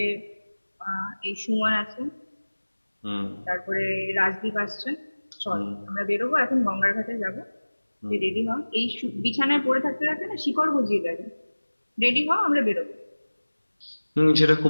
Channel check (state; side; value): inverted; both; correlation -1.00